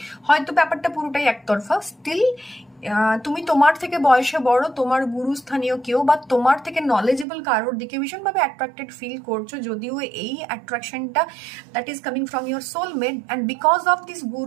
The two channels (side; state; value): left; drops out; at 7.2 s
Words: হয়তো ব্যাপারটা পুরোটাই একতরফা, স্টিল তুমি তোমার থেকে বয়সে বড়, তোমার গুরুস্থানীয় কেউ, বা তোমার থেকে নলেজেবল কারোর দিকে ভীষণভাবে অ্যাট্রাক্টেড ফিল করছো, যদিও এই অ্যাট্রাকশনটা that is coming from your soulmate, and because of this